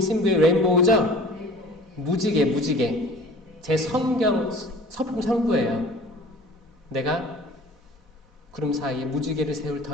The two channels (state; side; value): normal; both; correlation 0.45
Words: 레인보우죠? 무지개. 제 성경 서품 선구예요. 내가 구름 사이에 무지개를 세울